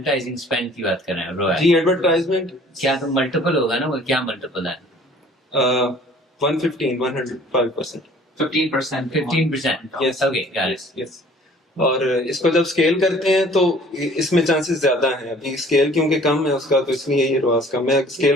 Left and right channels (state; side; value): normal; both; correlation 0.52